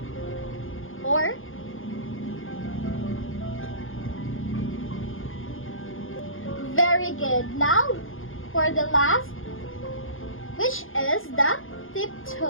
Or very good. Now for the last, which is the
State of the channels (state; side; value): late; right; 0.59 ms